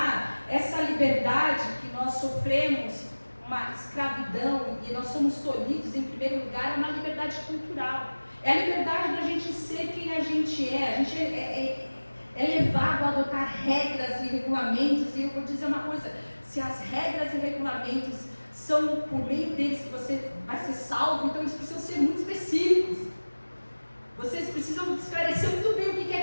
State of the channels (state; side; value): inverted; both; correlation -1.00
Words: essa liberdade que nós sofremos, uma escravidão, e nós somos tolhidos em primeiro lugar, é uma liberdade cultural. É a liberdade da gente ser quem a gente é. A gente é levado a adotar regras e regulamentos, e eu vou dizer uma coisa: se as regras e regulamentos são por meio deles que você vai ser salvo, então eles precisam ser muito específicos. Vocês precisam esclarecer muito bem o que é